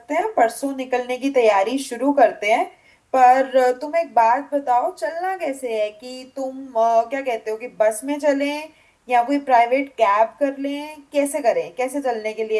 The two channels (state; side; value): identical; both; correlation 1.00